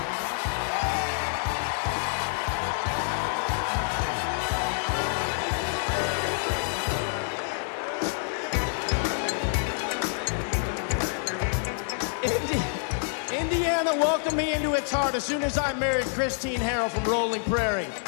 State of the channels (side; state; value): right; silent; 60 dB below the other